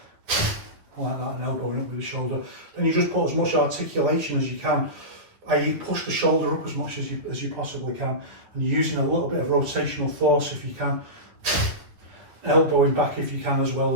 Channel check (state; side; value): late; left; 9.7 ms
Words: like that and elbowing up with the shoulder. Then you just put as much articulation as you can, i.e. push the shoulder up as much as you possibly can, and you're using a little bit of rotational force if you can, elbowing back if you can, as well